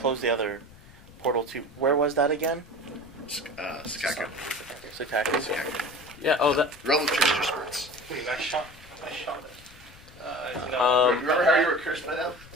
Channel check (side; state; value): left; noise; rumble, 22 dB below the sound